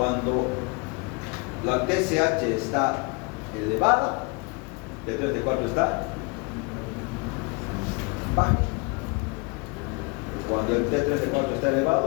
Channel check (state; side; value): quieter; right; 30.0 dB